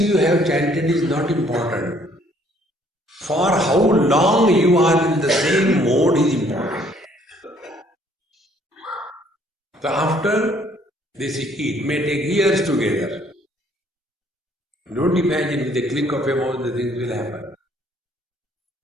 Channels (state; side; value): normal; both; correlation 0.62